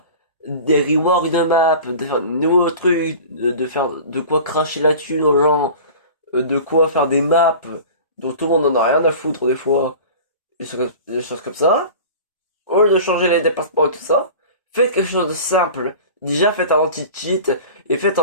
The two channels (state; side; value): inverted; both; correlation -0.38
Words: des reworks de map, de faire de nouveaux trucs, de faire de quoi cracher là-dessus aux gens, de quoi faire des maps dont tout le monde en a rien à foutre des fois, des choses comme ça, au lieu de changer les déplacements et tout ça, faites quelque chose de simple. Déjà faites un anti-cheat et faites